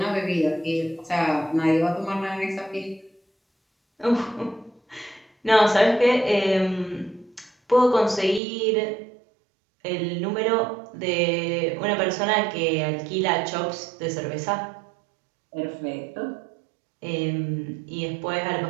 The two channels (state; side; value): drops out; left; at 8.4 s